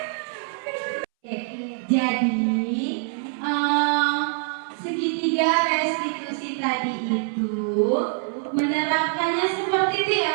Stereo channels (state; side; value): silent; left; 62 dB below the other